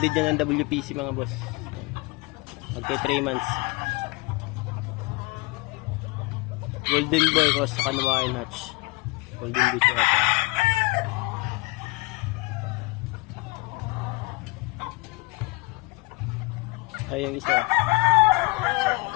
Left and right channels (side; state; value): right; quieter; 25.6 dB